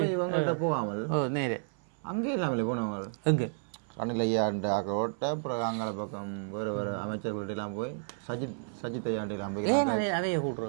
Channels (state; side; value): silent; left; 57 dB below the other